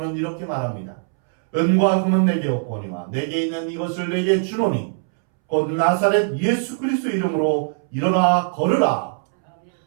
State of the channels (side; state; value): left; silent; 65 dB below the other